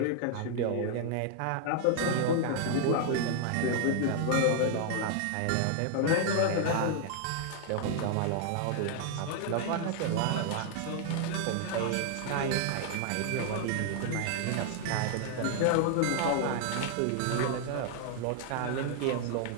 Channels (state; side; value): different; both; correlation 0.00